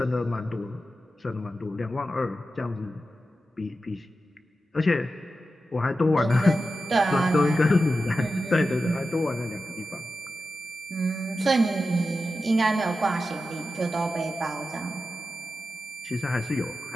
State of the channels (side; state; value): both; normal; correlation 0.91